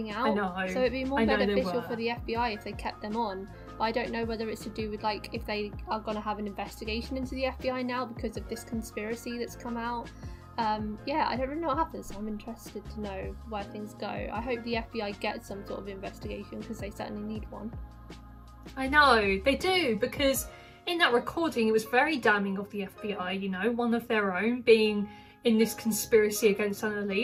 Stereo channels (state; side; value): identical; both; correlation 1.00